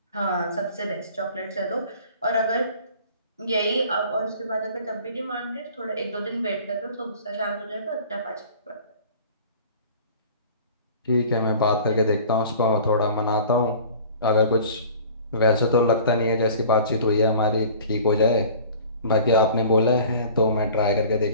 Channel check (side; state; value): both; inverted; correlation -0.45